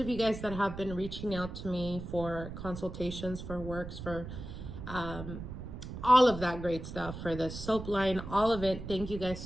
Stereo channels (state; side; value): noise; right; rumble, 9 dB below the sound